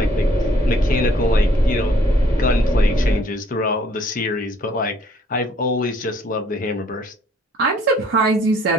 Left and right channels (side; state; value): both; normal; correlation 0.62